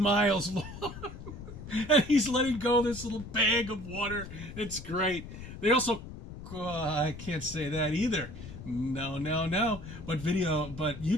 long. And he's letting go this little bag of water. It's great. They also, I can't say that either. No. But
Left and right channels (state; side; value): noise; left; rumble, 12 dB below the sound